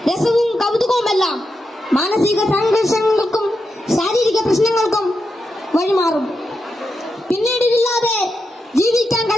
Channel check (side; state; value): both; normal; correlation 0.87